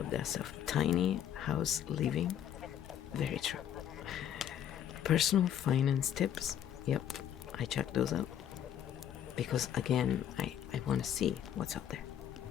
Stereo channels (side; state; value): right; quieter; 9.9 dB